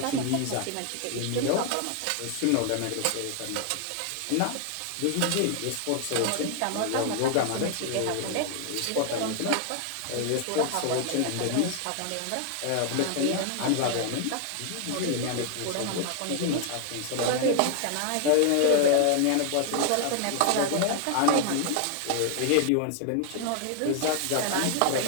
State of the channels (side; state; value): both; different; correlation 0.00